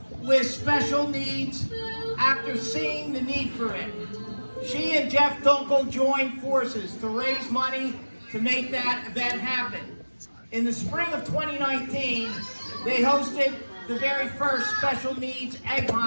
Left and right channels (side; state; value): both; inverted; correlation -1.00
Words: with special needs after seeing the need for it. She and Jeff Dunkel joined forces to raise money to make that event happen. In the spring of 2019, they hosted the very first special needs egg